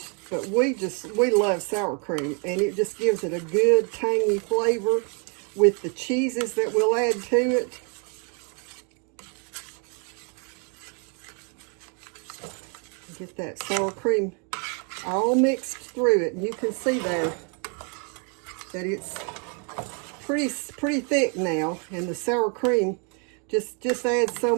but we love sour cream, and it just gives it a good tangy flavor with the cheeses that we'll add to it. Get that sour cream all mixed through it, and you can see there that it's pretty thick now, and the sour cream just adds so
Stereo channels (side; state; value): left; quieter; 38.1 dB